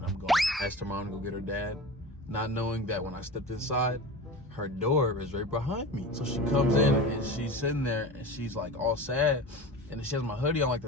I'm going. Asked her mom to go get her dad, not knowing that when I stepped inside, her door is right behind me. So she comes in and she's sitting there and she's like all sad, and she has my hoodie on like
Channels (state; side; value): normal; both; correlation 0.31